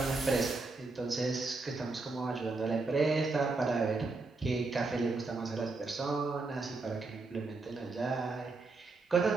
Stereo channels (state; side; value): quieter; left; 3.6 dB